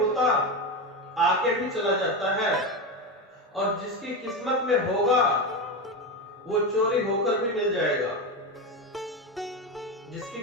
आके भी चला जाता है, और जिसकी किस्मत में होगा वो चोरी होकर भी मिल जाएगा। जिसकी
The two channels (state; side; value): normal; both; correlation 0.17